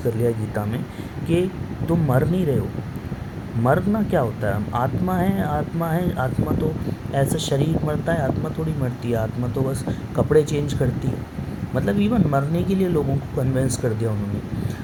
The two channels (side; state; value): both; identical; correlation 1.00